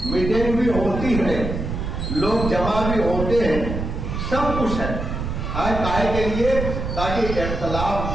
میٹنگ بھی ہوتی ہے، لوگ جمع بھی ہوتے ہیں، سب کچھ ہے کائے کے لیے تاکہ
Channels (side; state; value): right; noise; rumble, 4 dB below the sound